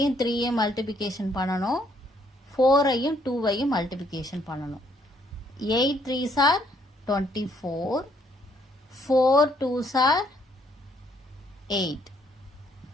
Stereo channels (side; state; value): both; normal; correlation 0.68